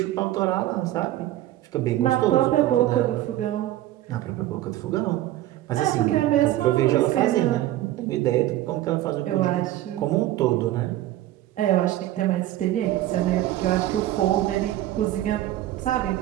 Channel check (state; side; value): quieter; left; 14.5 dB